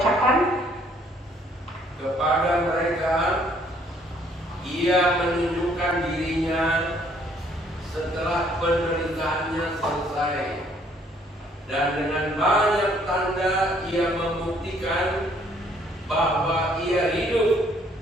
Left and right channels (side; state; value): both; normal; correlation 0.64